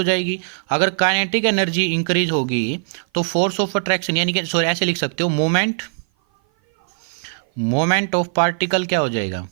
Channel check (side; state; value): left; silent; 56 dB below the other